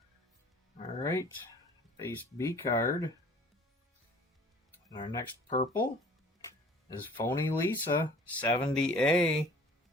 Alright, base B card. And our next purple is Phony Lisa, 70A.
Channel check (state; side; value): normal; both; correlation 0.49